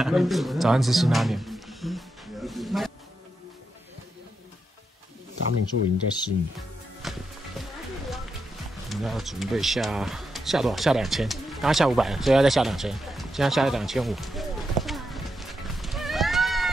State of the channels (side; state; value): both; normal; correlation 0.85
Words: 早上吃辛拉面。达敏树已经在试你，我们要准备下多少？下2000，刚刚下500了，所以要再下2000，现在下2500。